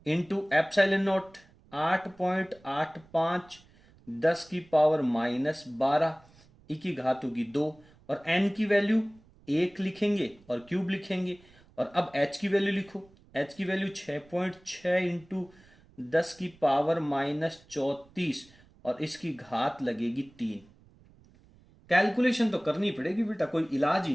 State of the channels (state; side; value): noise; right; rumble, 27 dB below the sound